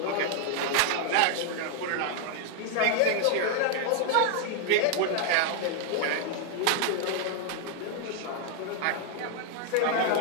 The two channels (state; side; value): different; both; correlation 0.00